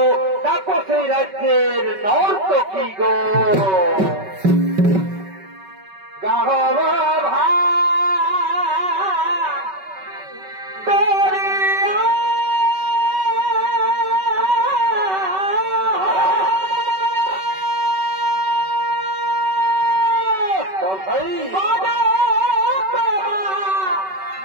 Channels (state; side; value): late; left; 5.3 ms